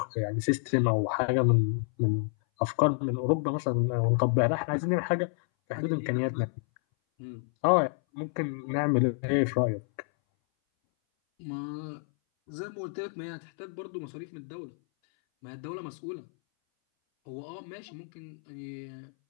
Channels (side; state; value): right; silent; 58 dB below the other